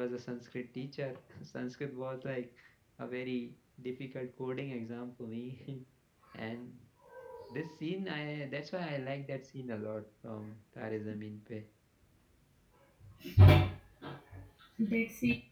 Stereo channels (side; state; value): both; identical; correlation 1.00